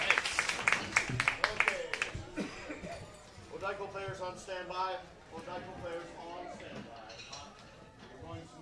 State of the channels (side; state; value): both; identical; correlation 1.00